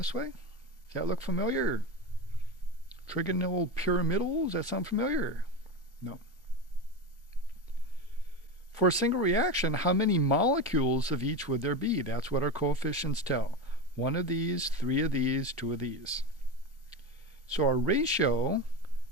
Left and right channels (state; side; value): normal; both; correlation 0.21